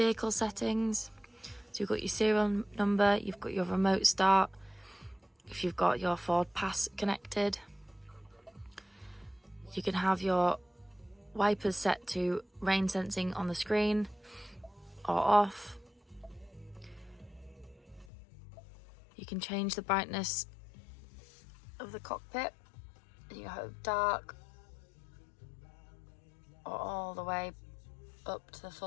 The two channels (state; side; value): drops out; right; at 18.1 s